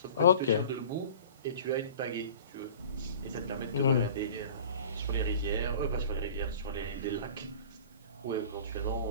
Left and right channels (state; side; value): inverted; both; correlation -0.42